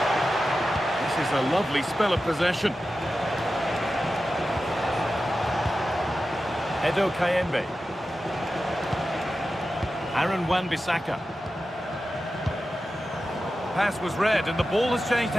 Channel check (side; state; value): both; normal; correlation 0.92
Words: This is a lovely spell of possession. Edo Kayembe. Aaron Wan-Bissaka. Pass was read and the ball has changed